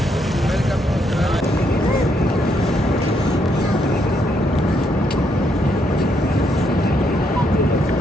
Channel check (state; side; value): normal; both; correlation 0.75